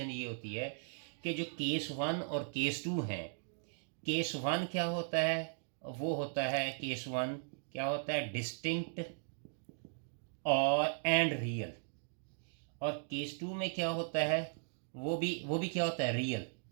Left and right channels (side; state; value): left; silent; digital silence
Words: ये होती है कि जो केस 1 और केस 2 हैं, केस 1 क्या होता है, वो होता है केस 1 क्या होता है, डिस्टिंक्ट और एंड रियल। और केस 2 में क्या होता है, वो भी क्या होता है, रियल,